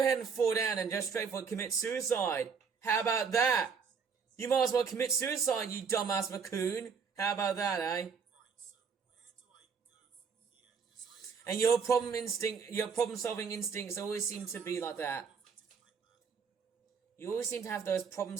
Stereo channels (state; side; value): quieter; left; 5.9 dB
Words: and fall down and just straightforward commit suicide. How about that? You might as well commit suicide, you dumbass raccoon. How about that, eh? And your problem-solving instincts always seem to be like that. You always seem to have those